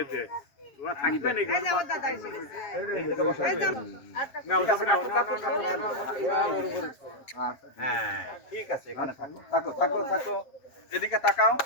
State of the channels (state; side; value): late; right; 7.5 ms